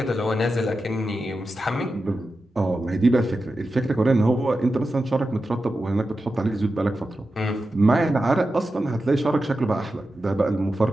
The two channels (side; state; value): both; normal; correlation 0.91